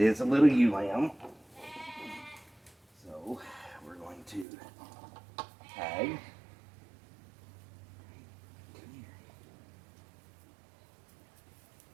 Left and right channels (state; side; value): drops out; left; at 4.5 s